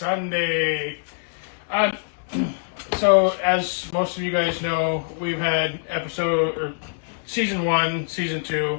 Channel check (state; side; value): silent; right; digital silence